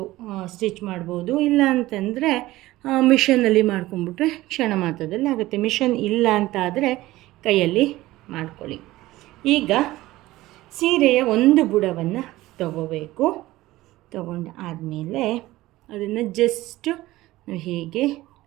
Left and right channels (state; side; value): quieter; left; 17.4 dB